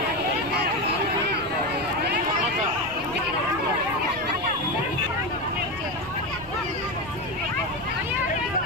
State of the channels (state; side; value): noise; left; rumble, 18 dB below the sound